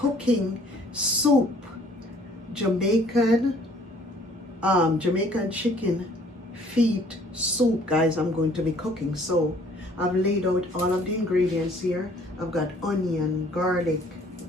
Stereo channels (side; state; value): both; normal; correlation 0.57